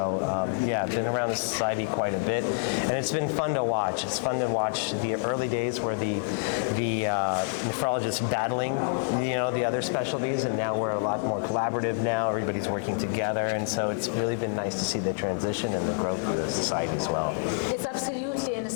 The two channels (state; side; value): silent; right; digital silence